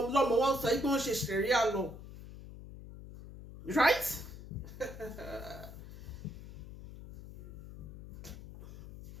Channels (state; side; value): noise; left; hum, 12 dB below the sound